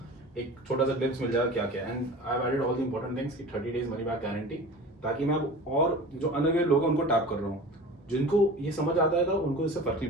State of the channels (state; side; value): normal; both; correlation 0.37